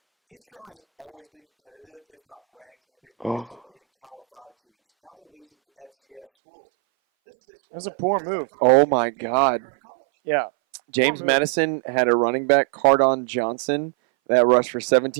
Oh. That was a poor move. Oh my God. Yeah. James Madison had a running back, Cardon Johnson, that rushed for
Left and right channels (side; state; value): left; drops out; at 6.2 s